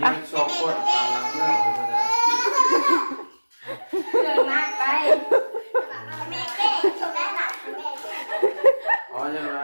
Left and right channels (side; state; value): both; inverted; correlation -1.00